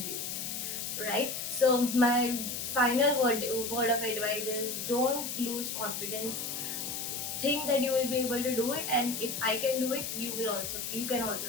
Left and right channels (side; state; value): left; noise; hiss, 4 dB below the sound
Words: you. Right? So my final word of advice is, don't lose confidence. Think that you will be able to do it, and if I can do it, you can